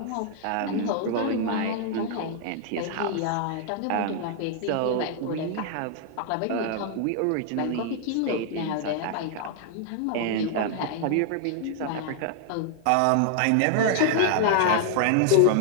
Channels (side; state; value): both; different; correlation 0.00